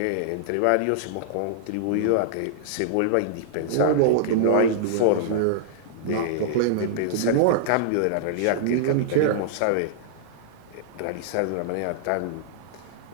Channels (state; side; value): different; both; correlation -0.01